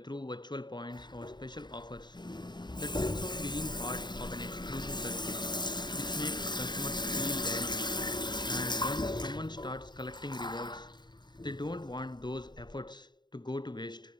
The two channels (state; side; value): late; right; 0.21 ms